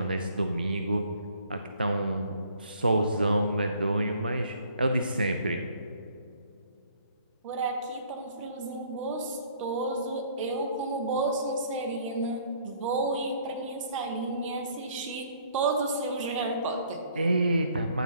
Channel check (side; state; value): both; inverted; correlation -0.60